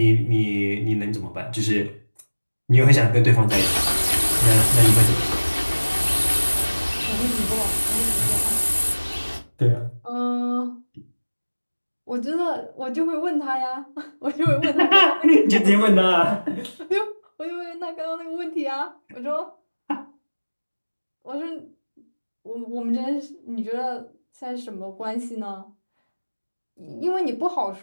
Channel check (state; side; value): inverted; both; correlation -1.00